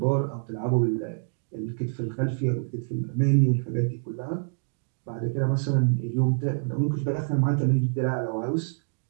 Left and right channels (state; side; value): silent; left; digital silence